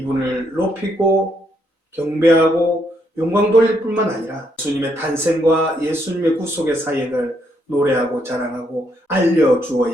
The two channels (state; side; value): late; right; 3.9 ms